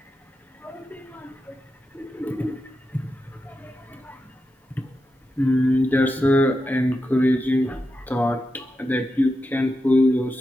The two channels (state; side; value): normal; both; correlation 0.88